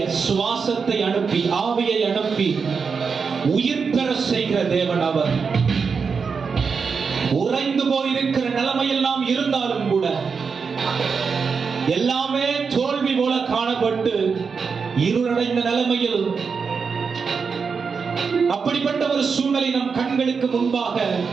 சுவாசத்தை அனுப்பி, ஆவியை அனுப்பி உயிர் பெற செய்கிற தேவன் அவர். உறைந்து போயிருக்கிற நிலைமையில் நாம் இருந்தாலும் கூட எல்லாமே தோல்வி போல காணப்பட்டு இருளடைந்த நிலைமையில் அப்படிப்பட்ட ஒரு சூழ்நிலை நம் கண்களுக்கு முன்பாக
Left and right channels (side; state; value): left; quieter; 5.5 dB